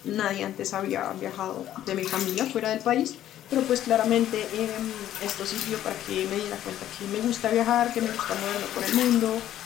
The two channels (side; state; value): right; quieter; 12.1 dB